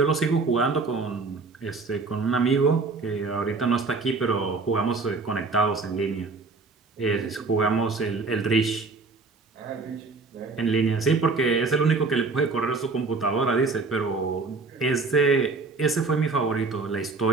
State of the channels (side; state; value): left; quieter; 4.0 dB